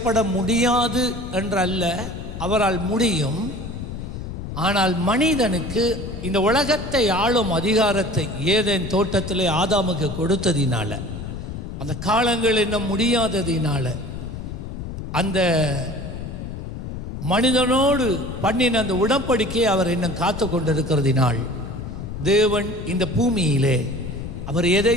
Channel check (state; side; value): noise; left; rumble, 8 dB below the sound